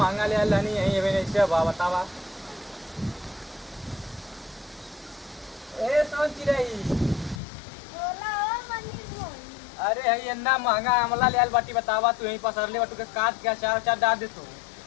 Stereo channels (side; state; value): right; drops out; at 7.4 s